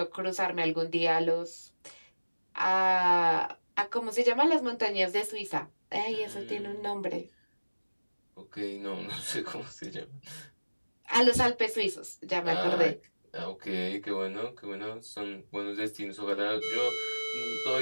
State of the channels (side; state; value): both; inverted; correlation -1.00